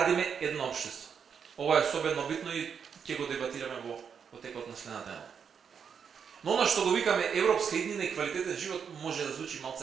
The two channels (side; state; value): left; quieter; 7.0 dB